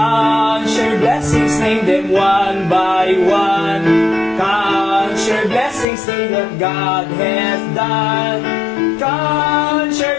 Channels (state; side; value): drops out; right; at 5.9 s